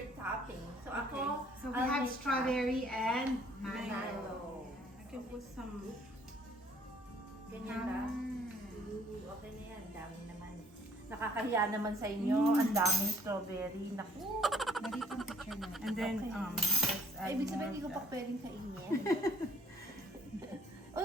topping. So ako, So we I'll have make strawberry and that. mango. Mango. I can put some. Ganyan ba? Mm. Ooh, okay na yan. Dami naman. Nakakahiya naman sa inyo. Ang daming strawberry. Naku. Narito ang picture natin. And then, Okay. let's add Ibig sabihin, more hindi ko of pa that. pwedeng kainin.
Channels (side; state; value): both; normal; correlation 0.59